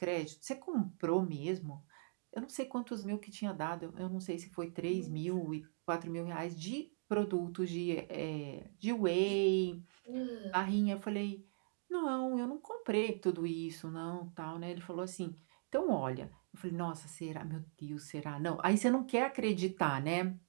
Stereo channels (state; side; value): silent; left; digital silence